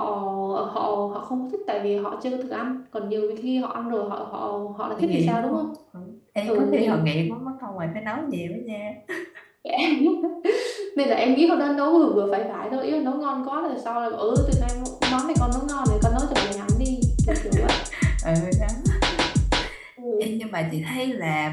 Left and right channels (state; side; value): identical; both; correlation 1.00